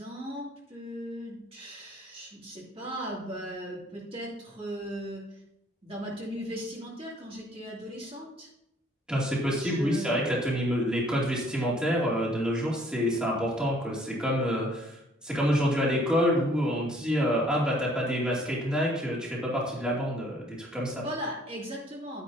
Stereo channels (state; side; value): normal; both; correlation 0.60